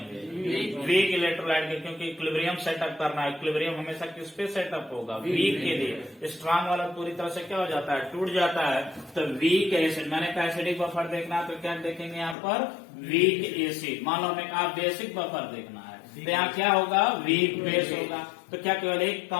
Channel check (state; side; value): drops out; right; at 12.4 s